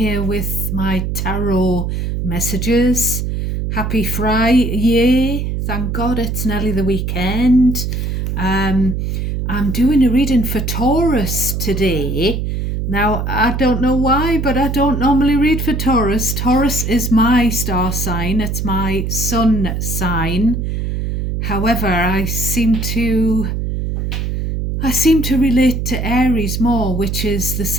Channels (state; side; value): noise; right; hum, 2 dB below the sound